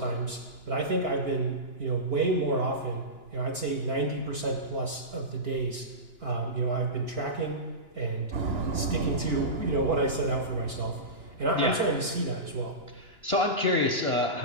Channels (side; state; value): left; late; 2.9 ms